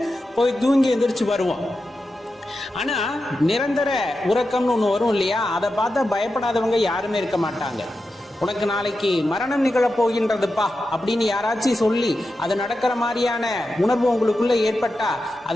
போய் தூங்கி எந்திரிச்சு வருவோம். ஆனா நிரந்தர உறக்கம்னு ஒண்ணு வரும் இல்லையா, அதை பார்த்தா பயப்படாதவங்க யாருமே இருக்க மாட்டாங்க. உனக்கு நாளைக்கு மரணம் நிகழப் போகின்றதுப்பா அப்படின்னு யாராச்சும் சொல்லி அது நடக்கிற மாதிரியான உணர்வு உங்களுக்குள்ள ஏற்பட்டா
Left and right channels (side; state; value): both; normal; correlation 0.90